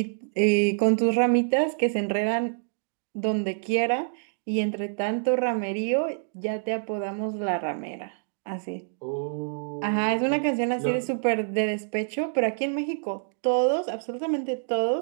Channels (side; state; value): left; silent; digital silence